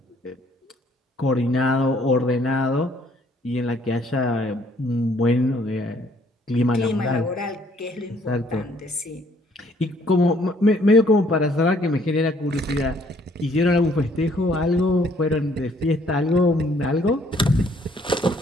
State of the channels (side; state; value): both; normal; correlation 0.63